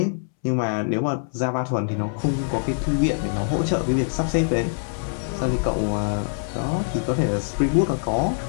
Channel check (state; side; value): silent; right; 63 dB below the other